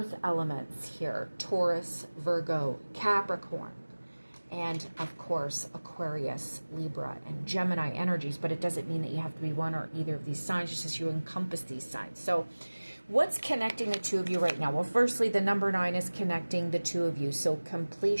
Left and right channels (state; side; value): inverted; both; correlation -1.00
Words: elements here. Taurus, Virgo, Capricorn. And of course, Aquarius, Libra, and Gemini energies, but it doesn't mean that you have to be one or either of these signs, just as you encompass these signs. So what's connecting the two of you right now? Well, firstly, the number 9 is connecting the two of you. So